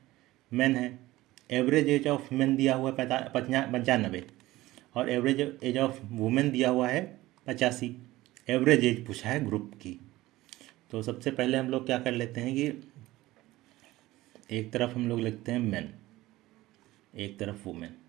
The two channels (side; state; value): left; quieter; 17.6 dB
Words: मैन है, एवरेज एज ऑफ मैन दिया हुआ है 95 और एवरेज एज ऑफ वुमेन दिया हुआ है 85। एवरेज एज पूछा है ग्रुप की। तो सबसे पहले हम लोग क्या कर लेते हैं कि एक तरफ हम लोग लिखते हैं मैन, एक तरफ वुमेन,